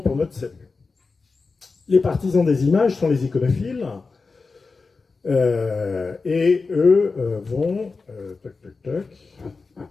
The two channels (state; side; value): quieter; right; 4.3 dB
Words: notre salut. Les partisans des images sont les iconophiles, et eux vont